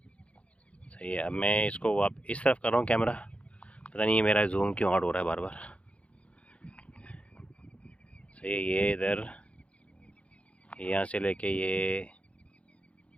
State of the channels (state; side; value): late; right; 0.062 ms